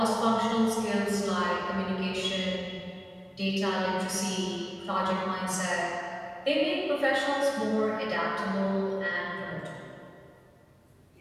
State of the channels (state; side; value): identical; both; correlation 1.00